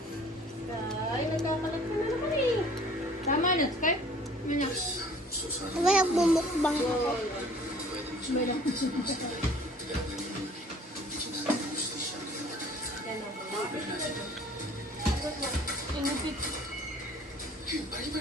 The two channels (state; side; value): normal; both; correlation 0.51